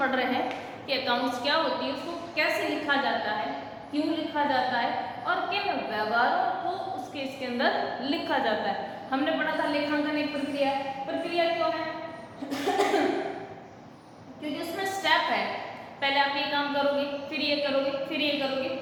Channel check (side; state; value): both; identical; correlation 1.00